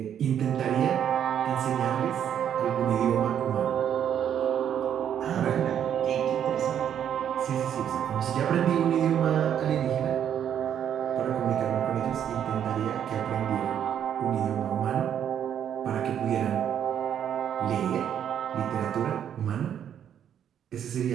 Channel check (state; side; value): quieter; left; 9.3 dB